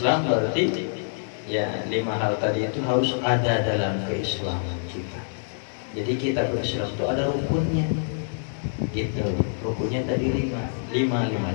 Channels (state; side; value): silent; right; 61 dB below the other